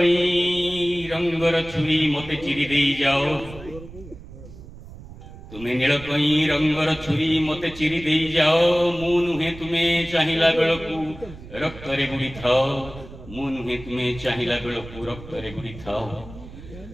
रंगर छुरी मते चिरी दे जाओ तुम्हें नील कई रंगर छुरी मते चिरी दे जाओ मु नुहे तुम्हें चाहिला बेलकू रक्त रे बुड़ी थाओ मु नुहे तुम्हें चाहिला बेलकू रक्त रे बुड़ी थाओ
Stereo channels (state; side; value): noise; right; rumble, 16 dB below the sound